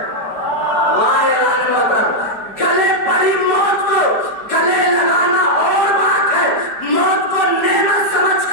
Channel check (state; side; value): late; right; 4.7 ms